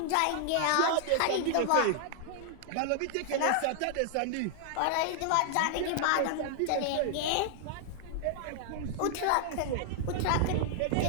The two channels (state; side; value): different; both; correlation 0.00